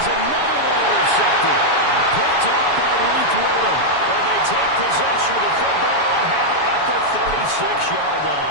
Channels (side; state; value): right; late; 7.0 ms